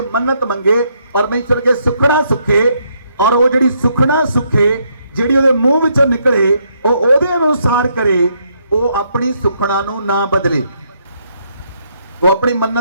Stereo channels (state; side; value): inverted; both; correlation -0.74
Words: मन्नत मंगे, परमेश्वर के सुखना सुखे, और वो जिहड़ी सुखना सुखे जिहड़ी ओदे मुंह विचों निकले वो ओदे अनुसार करे, वो अपनी सुखना नूं ना बदले, वो अपनी